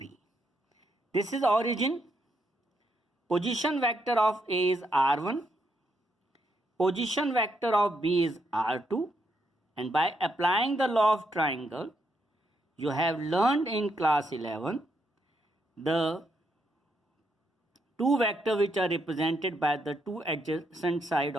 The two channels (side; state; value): both; normal; correlation 0.78